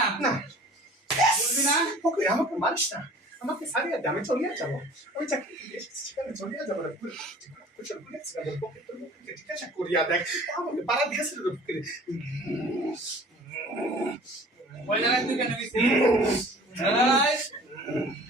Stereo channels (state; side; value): normal; both; correlation 0.47